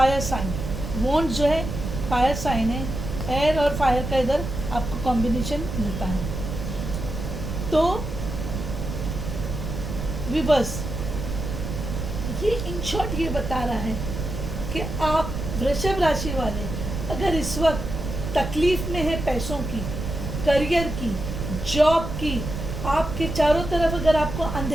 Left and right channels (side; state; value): right; noise; rumble, 5 dB below the sound